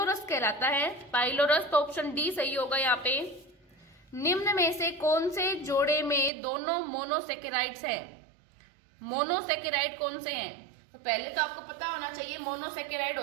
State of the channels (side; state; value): left; drops out; at 6.3 s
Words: कहलाता है। पाइलोरस, तो ऑप्शन डी सही होगा यहाँ पे। निम्न में से कौन से जोड़े में दोनों मोनोसेकेराइड्स हैं? मोनोसेकेराइड कौन से हैं? तो पहले तो आपको पता होना चाहिए मोनोसेकेराइड